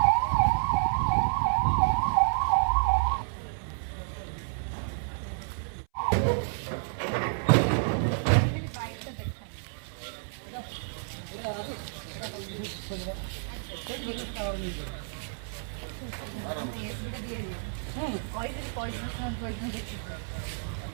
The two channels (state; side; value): silent; left; 58 dB below the other